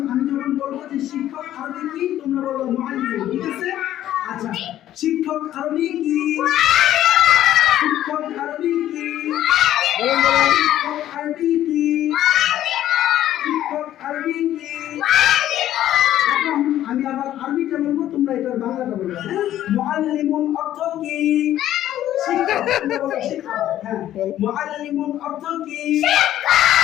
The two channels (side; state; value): right; quieter; 12.5 dB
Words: আমি যখন বলবো যে শিক্ষক আরবি কি, তোমরা বলবো মুআল্লিমুন। ঠিক আছে? আচ্ছা, শিক্ষক আরবি কি? শিক্ষক আরবি কি? শিক্ষক আরবি কি? শিক্ষক আরবি কি? এখন আমি আবার আরবিটা বলবো, তোমরা এটার বাংলাটা বলবে। মুআল্লিমুন অর্থ কি? শিক্ষক। তোমরা বলো শিক্ষক। হ্যাঁ, মুআল্লিমুন অর্থ কি?